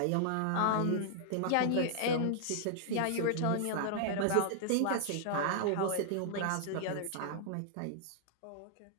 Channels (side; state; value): both; different; correlation -0.01